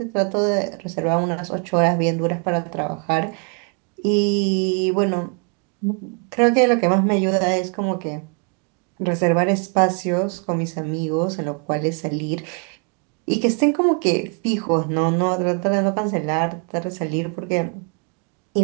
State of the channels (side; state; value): left; quieter; 38.4 dB